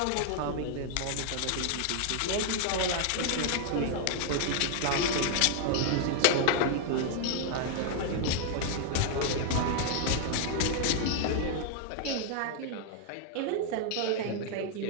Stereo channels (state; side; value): different; both; correlation 0.00